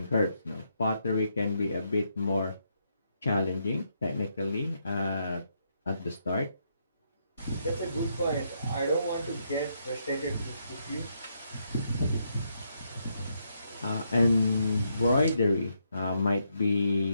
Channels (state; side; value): inverted; both; correlation -0.78